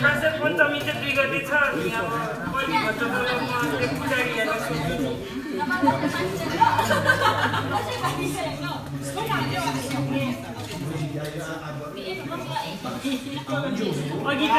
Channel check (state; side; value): identical; both; correlation 1.00